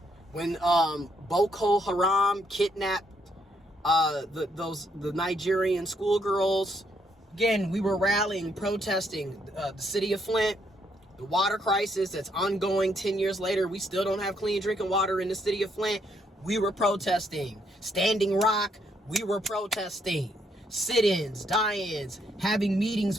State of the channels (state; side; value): normal; both; correlation 0.73